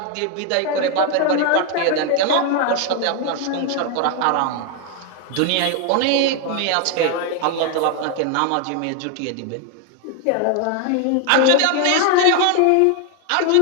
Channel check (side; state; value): both; different; correlation 0.01